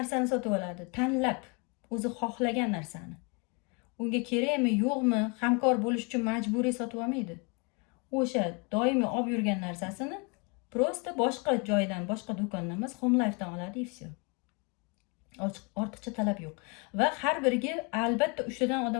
sotib oladi, tanlab, o'zi xohlagan narsani. Unga kerakmi, yo'qmi, hamkor bo'lish uchun majburiy sotib olmaydi. O'sha doimiy olib yurgan narsasini prosta boshqa joydan, boshqa do'kondan emas, Home Life'dan oladi, и все. Ortiqcha talab yo'q. Va har biriga albatta 3 tadan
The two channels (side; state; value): right; quieter; 31.8 dB